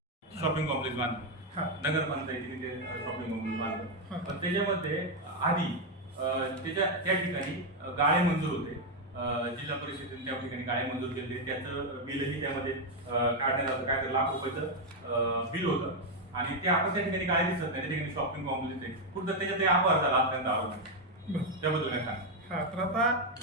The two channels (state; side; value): normal; both; correlation 0.03